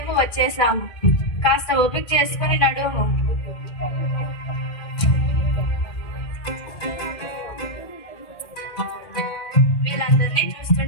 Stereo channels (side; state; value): right; late; 2.5 ms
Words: వచ్చేసాము. కాస్త ఓపిక చేసుకుని నడుము. వీళ్ళందరినీ